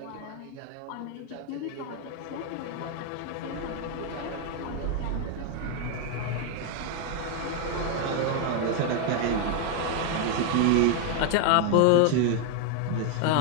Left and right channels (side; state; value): both; different; correlation 0.01